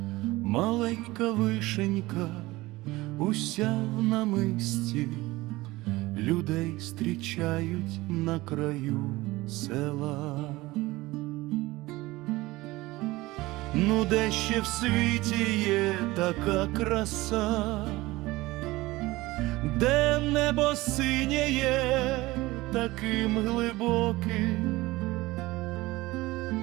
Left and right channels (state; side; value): quieter; left; 19.7 dB